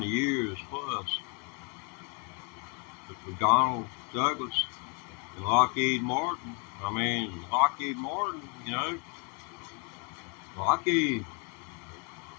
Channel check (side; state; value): right; quieter; 34.6 dB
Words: years plus. But for Donald Douglas and Lockheed Martin, Lockheed,